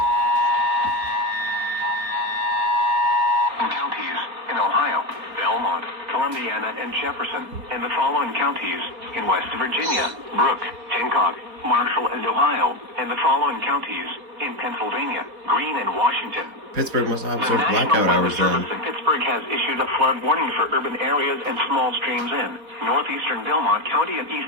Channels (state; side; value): late; left; 4.3 ms